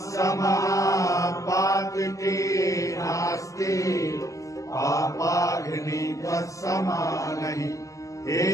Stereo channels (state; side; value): late; right; 0.16 ms